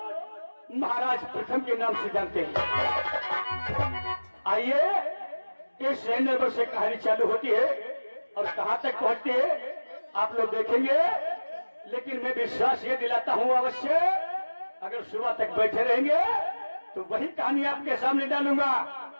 महाराज प्रथम के नाम से जानते हैं। आइए, इस शहर नरबर से कहानी चालू होती है और कहां तक पहुंचती है आप लोग देखेंगे। लेकिन मैं विश्वास ये दिलाता हूं अवश्य, अगर सुबह तक बैठे रहेंगे तो वही कहानी आपके सामने डालूंगा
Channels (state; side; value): inverted; both; correlation -1.00